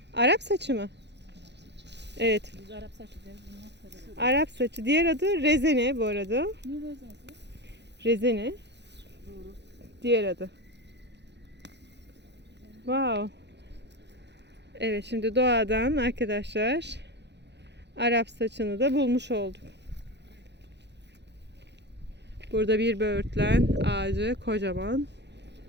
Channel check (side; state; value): left; late; 0.50 ms